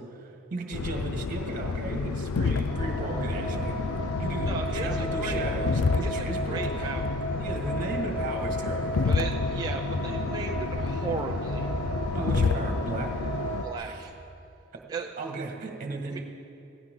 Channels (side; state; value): both; normal; correlation 0.50